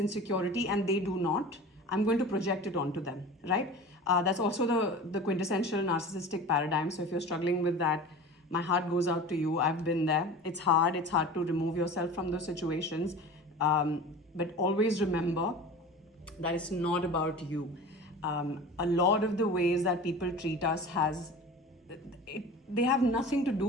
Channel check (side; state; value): both; normal; correlation 0.36